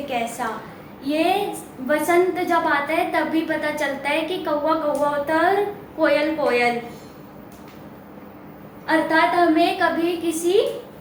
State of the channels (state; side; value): identical; both; correlation 1.00